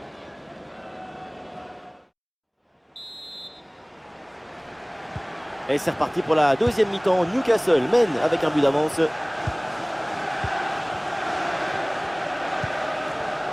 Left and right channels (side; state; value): both; identical; correlation 1.00